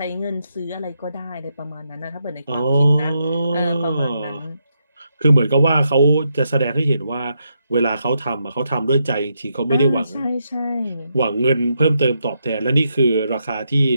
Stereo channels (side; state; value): both; inverted; correlation -0.81